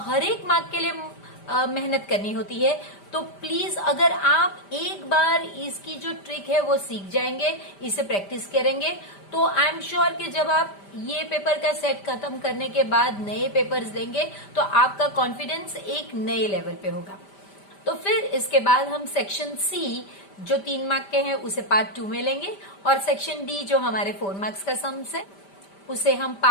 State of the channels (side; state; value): right; late; 5.1 ms